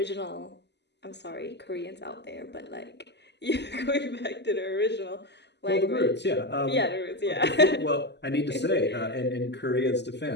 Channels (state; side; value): late; right; 0.50 ms